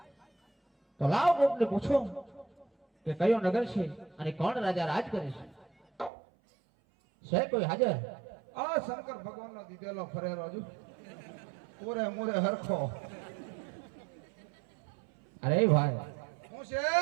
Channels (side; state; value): left; drops out; at 6.1 s